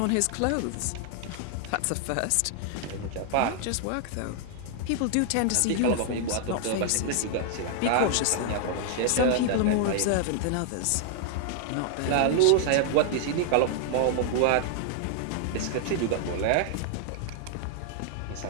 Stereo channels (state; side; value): different; both; correlation 0.00